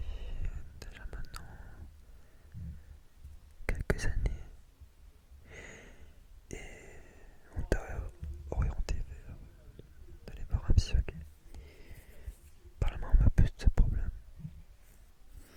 déjà maintenant quelques années et on t'a orienté vers d'aller voir un psy, ok? Parle-moi un peu de ce problème.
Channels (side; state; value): both; identical; correlation 1.00